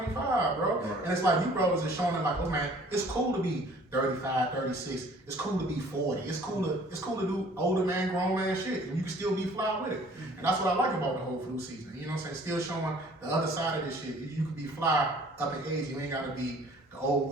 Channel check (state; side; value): normal; both; correlation 0.54